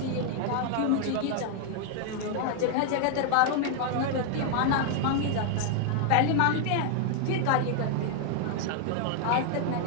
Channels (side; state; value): both; different; correlation 0.00